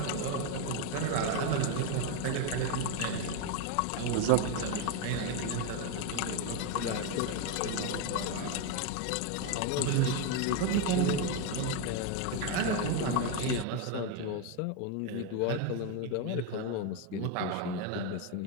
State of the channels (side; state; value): both; different; correlation 0.02